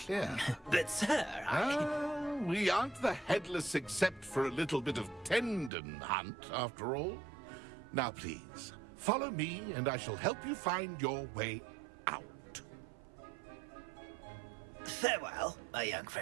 But, sir, we aren't the headless except for a little bit of tendon hunt, after all. Now, please, follow me, and I shall help you find your way out. Farewell, my young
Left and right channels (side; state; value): left; drops out; at 5.7 s